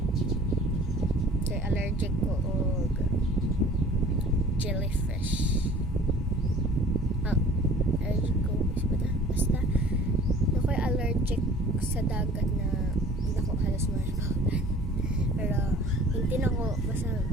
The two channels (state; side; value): normal; both; correlation 0.48